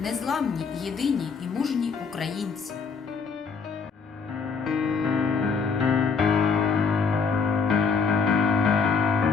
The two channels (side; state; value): right; quieter; 5.4 dB